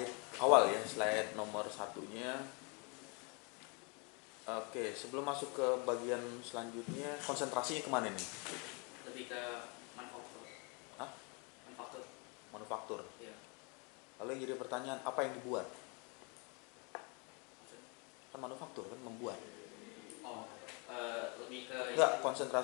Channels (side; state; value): right; quieter; 32.9 dB